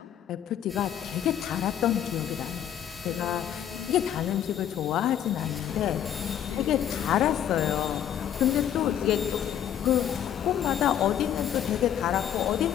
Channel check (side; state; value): right; quieter; 10.1 dB